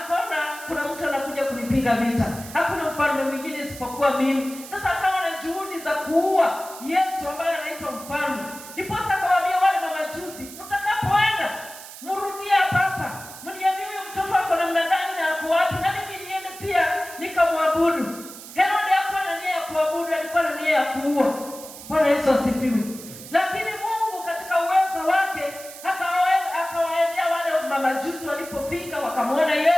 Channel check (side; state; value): right; noise; hiss, 14 dB below the sound